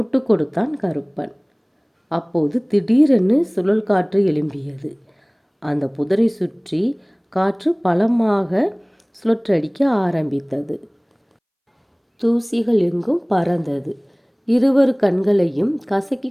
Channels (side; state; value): both; identical; correlation 1.00